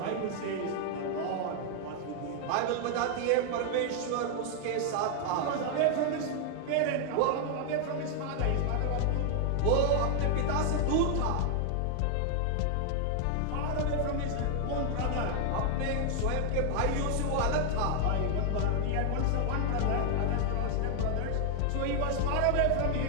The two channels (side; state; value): both; different; correlation 0.00